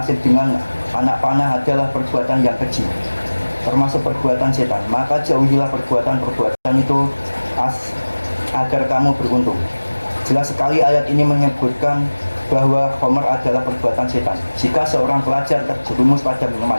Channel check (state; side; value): inverted; both; correlation -1.00